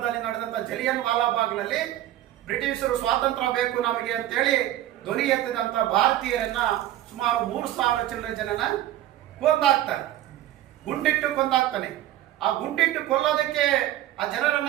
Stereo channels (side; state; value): left; quieter; 13.6 dB